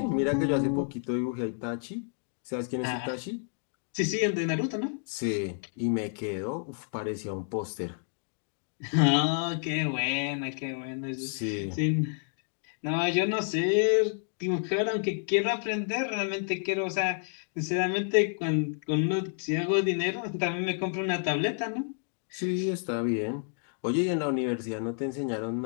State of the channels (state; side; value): silent; right; 58 dB below the other